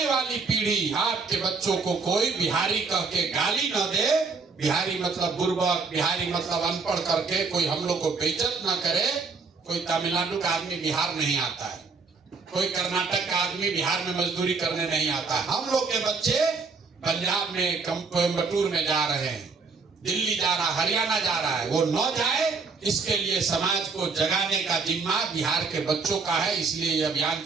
वाली पीढ़ी, आपके बच्चों को कोई बिहारी कह के गाली न दे, बिहारी मतलब बुर्बक, बिहारी मतलब अनपढ़ करके कोई हम लोग को बेइज्जत न करे। कोई तमिलनाडु का आदमी बिहार नहीं आता है, कोई कर्नाटक का आदमी बिहार में मजदूरी करने नहीं आता है। हम लोग के बच्चे पंजाब में, कोयम्बटूर में जा रहे हैं, दिल्ली जा रहा, हरियाणा जा रहा है, वो न जाए, इसके लिए समाज को जगाने का जिम्मा बिहार के बच्चों का है। इसलिए ये अभियान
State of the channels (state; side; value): quieter; left; 4.6 dB